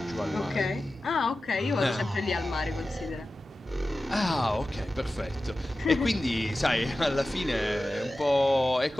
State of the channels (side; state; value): both; normal; correlation 0.94